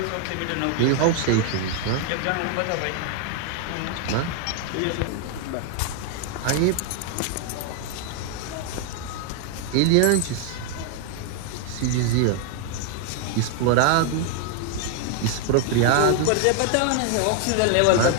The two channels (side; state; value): both; different; correlation 0.00